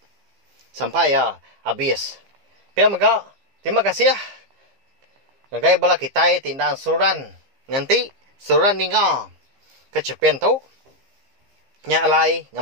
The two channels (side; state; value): left; late; 15 ms